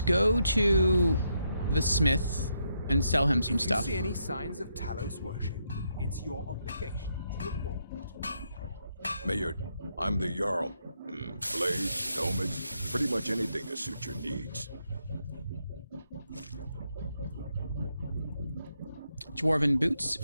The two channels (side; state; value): both; inverted; correlation -0.79